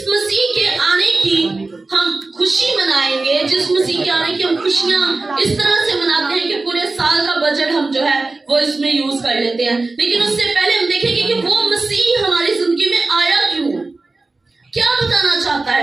مسیح کے آنے کی ہم خوشی منائیں گے، جس مسیح کے آنے کی ہم خوشیاں اس طرح سے مناتے ہیں کہ پورے سال کا بجٹ ہم جو ہے وہ اس میں یوز کر لیتے ہیں، لیکن اس سے پہلے ہم دیکھیں گے کہ وہ مسیح ہماری زندگی میں آیا کیوں، کیا بتانا چاہتا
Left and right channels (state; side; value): quieter; left; 3.4 dB